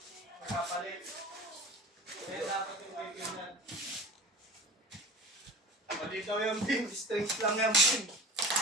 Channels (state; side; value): normal; both; correlation 0.36